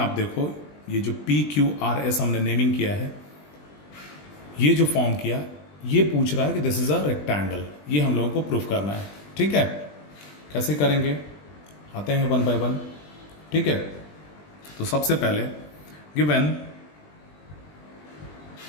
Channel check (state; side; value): late; right; 20 ms